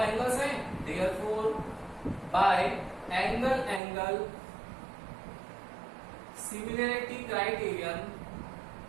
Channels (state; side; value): drops out; left; at 3.8 s